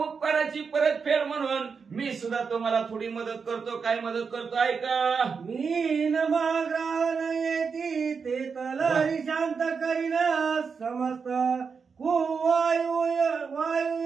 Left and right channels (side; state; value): left; quieter; 5.6 dB